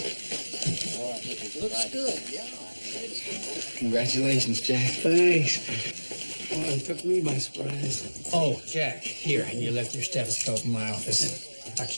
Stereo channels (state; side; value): inverted; both; correlation -1.00